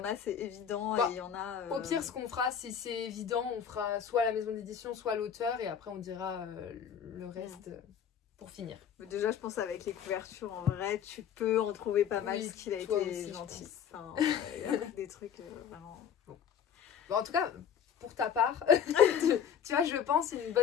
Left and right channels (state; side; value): quieter; right; 8.2 dB